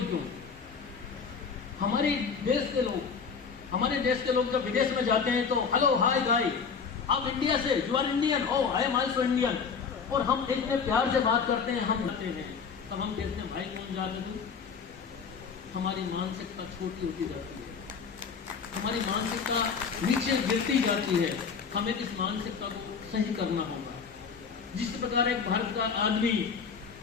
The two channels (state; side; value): quieter; right; 5.9 dB